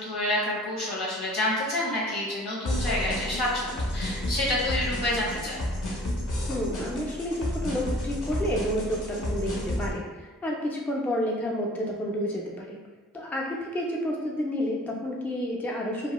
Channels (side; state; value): both; normal; correlation 0.50